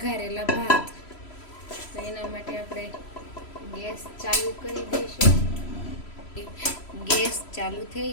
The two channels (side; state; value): right; late; 3.0 ms